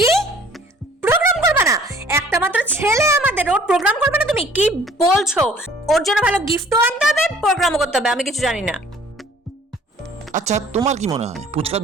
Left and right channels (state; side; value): normal; both; correlation 0.54